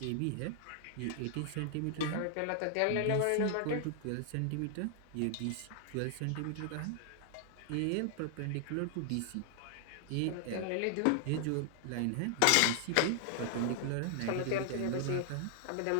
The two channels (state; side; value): different; both; correlation 0.00